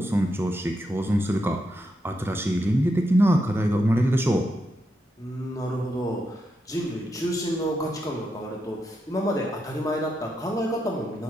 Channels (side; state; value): both; normal; correlation 0.83